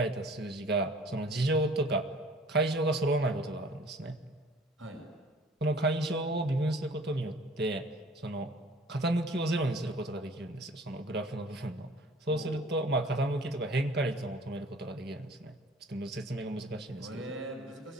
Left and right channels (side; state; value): both; normal; correlation 0.51